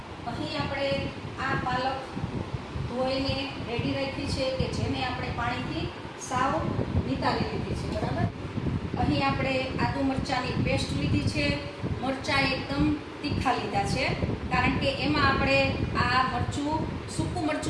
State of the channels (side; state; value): both; identical; correlation 1.00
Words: અહીં આપણે આ પાલક ધોઈને રેડી રાખી છે કે જેને આપણે પાણીથી સાવ નિતારી લીધી છે. બરાબર. અહીં આપણે આદુ મરચાંની પેસ્ટ લીધી છે. મરચાં એકદમ તીખા લીધા છે કારણ કે એમાં આપણે આ મરચું સૂકું